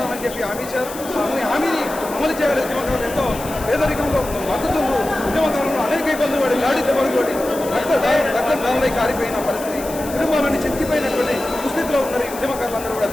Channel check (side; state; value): left; noise; hiss, 13 dB below the sound